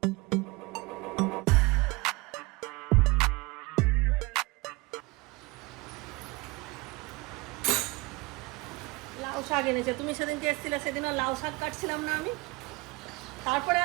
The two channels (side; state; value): left; quieter; 24.1 dB